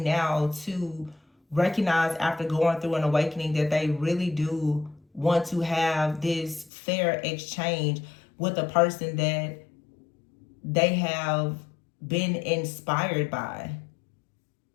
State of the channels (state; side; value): drops out; right; at 6.7 s